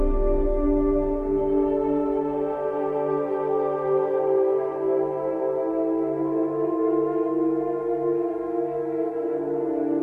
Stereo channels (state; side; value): identical; both; correlation 1.00